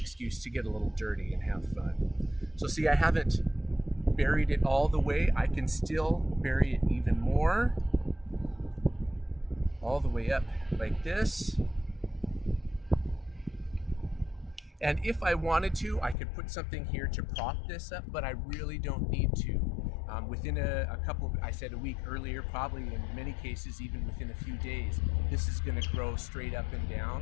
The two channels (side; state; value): right; drops out; at 16.2 s